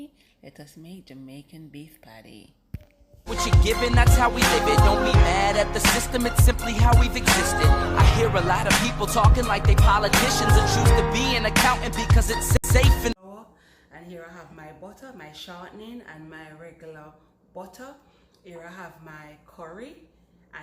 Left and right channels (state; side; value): identical; both; correlation 1.00